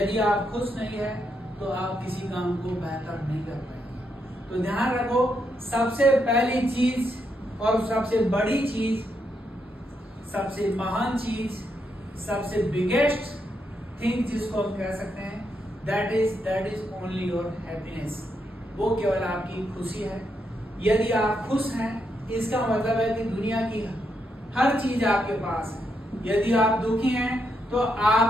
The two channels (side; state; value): both; normal; correlation 0.80